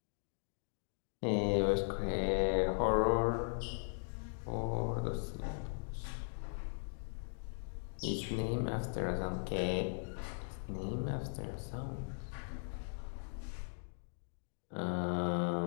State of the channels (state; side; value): silent; right; digital silence